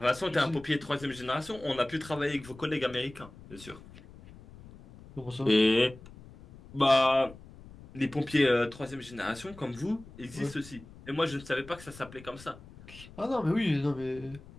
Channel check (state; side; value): noise; left; rumble, 19 dB below the sound